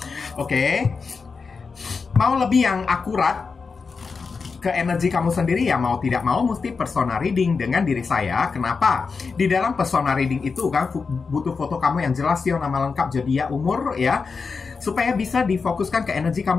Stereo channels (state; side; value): quieter; right; 4.9 dB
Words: Oke, mau lebih yang akurat ke energi kamu sendiri ya, mau tidak mau mesti personal reading dengan diri saya. Kenapa? Di dalam personal reading itu kan butuh foto kamu yang jelas ya, nama lengkap, zodiak, umur ya, supaya bisa difokuskan ke energi